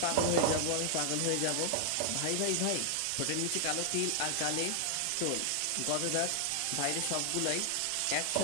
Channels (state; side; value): different; both; correlation 0.00